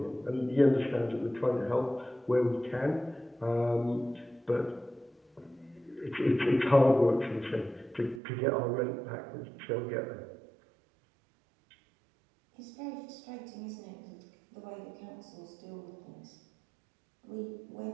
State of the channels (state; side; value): drops out; left; at 8.2 s